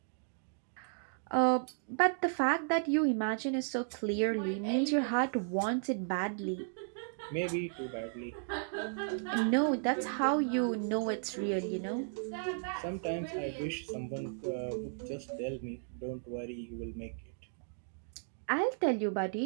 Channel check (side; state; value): left; silent; digital silence